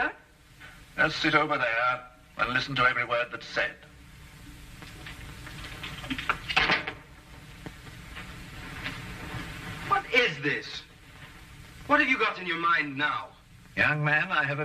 Just sit over there and listen to every word that's said. What is this? What have you got in your mind now? Young man, I have a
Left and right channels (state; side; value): identical; both; correlation 1.00